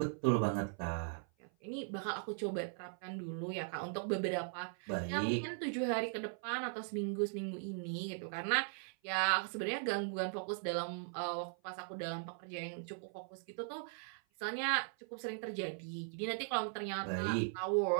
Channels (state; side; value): silent; left; 52 dB below the other